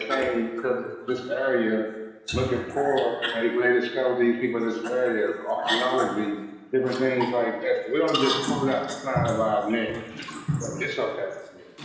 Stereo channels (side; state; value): both; identical; correlation 1.00